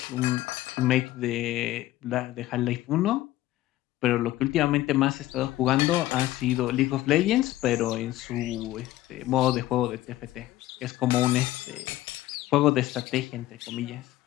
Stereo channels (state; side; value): quieter; right; 15.7 dB